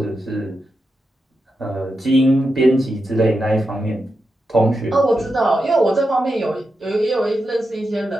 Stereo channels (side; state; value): both; normal; correlation 0.88